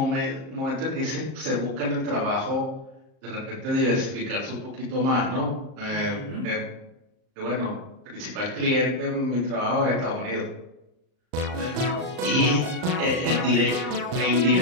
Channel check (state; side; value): late; left; 38 ms